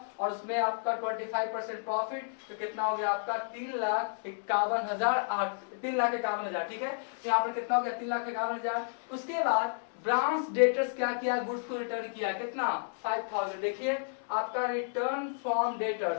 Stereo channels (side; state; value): right; silent; digital silence